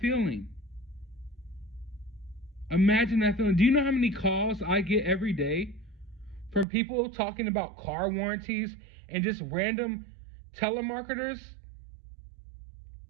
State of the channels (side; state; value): left; drops out; at 6.7 s